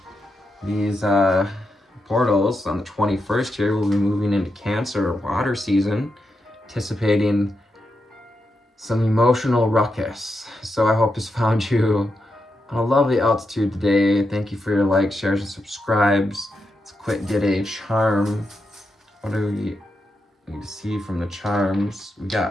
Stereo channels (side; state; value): both; normal; correlation 0.85